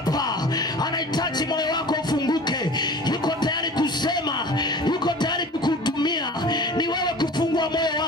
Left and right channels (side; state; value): both; normal; correlation 0.40